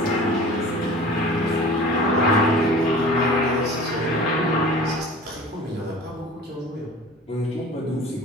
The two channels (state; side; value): normal; both; correlation 0.41